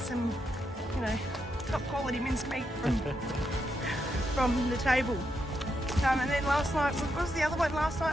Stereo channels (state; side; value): normal; both; correlation 0.82